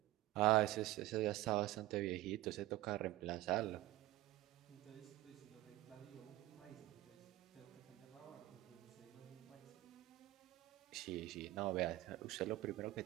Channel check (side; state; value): left; quieter; 16.9 dB